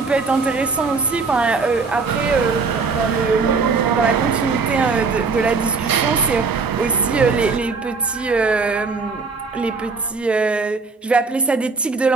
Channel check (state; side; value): quieter; left; 4.5 dB